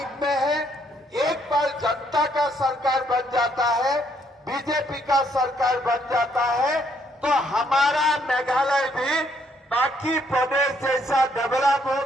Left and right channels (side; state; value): both; normal; correlation 0.70